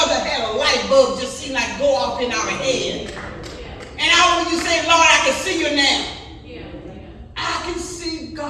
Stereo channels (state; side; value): identical; both; correlation 1.00